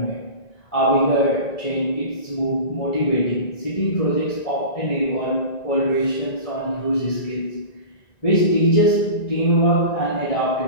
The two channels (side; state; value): right; late; 1.9 ms